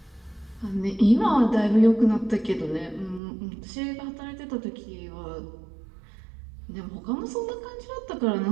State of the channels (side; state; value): left; drops out; at 3.2 s